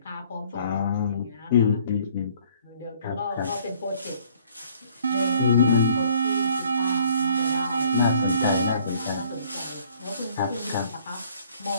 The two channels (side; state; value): both; inverted; correlation -0.59